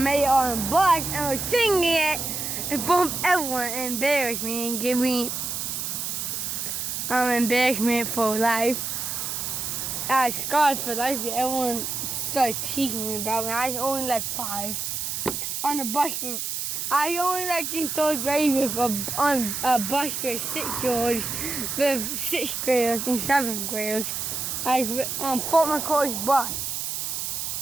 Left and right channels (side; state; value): right; noise; hiss, 3 dB below the sound